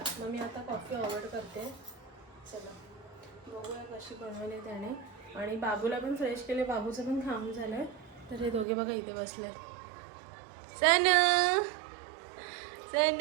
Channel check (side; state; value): left; drops out; at 8.7 s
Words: मग मी आता कॉफी अवॉइड करते. चला बघूया कशी बनवली त्याने. आणि बाबूला पण फ्रेश केले, बाबूचं पण खाऊन झालं आहे. तर हे दोघे बघा इथे बसले. सनू